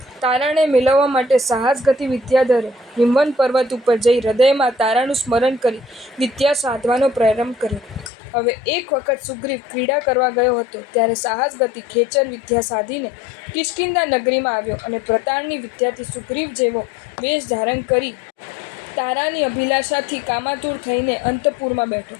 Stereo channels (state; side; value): drops out; right; at 8.1 s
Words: તારાને મેળવવા માટે સાહસ ગતિ વિદ્યાધરે હિમવન પર્વત ઉપર જઈ હૃદયમાં તારાનું સ્મરણ કરી વિદ્યા સાધવાનો પ્રારંભ કર્યો। હવે એક વખત સુગ્રીવ ક્રીડા કરવા ગયો હતો ત્યારે સાહસ ગતિ ખેચર વિદ્યા સાધીને કિષ્કિંધા નગરીમાં આવ્યો અને પ્રતારની વિદ્યાથી સુગ્રીવ જેવો વેશ ધારણ કરી તારાની અભિલાષાથી કામાતુર થઈને અંતઃપુરમાં બેઠો।